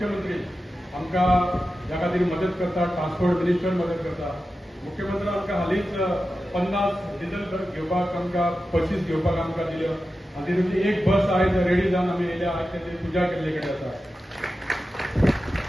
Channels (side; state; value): both; normal; correlation 0.92